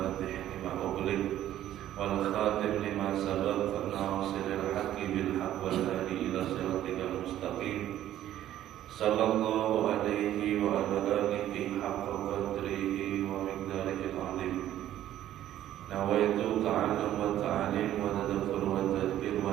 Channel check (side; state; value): left; quieter; 12.4 dB